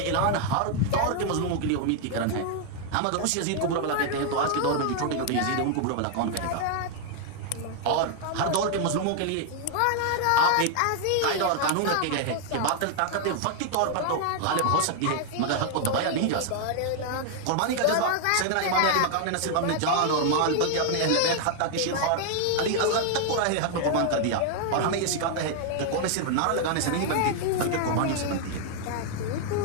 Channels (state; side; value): different; both; correlation 0.00